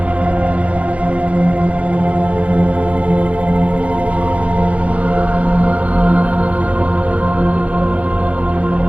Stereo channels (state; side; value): late; left; 0.065 ms